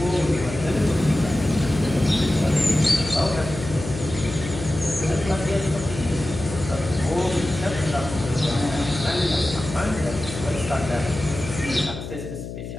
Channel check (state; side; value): noise; left; hum, 9 dB below the sound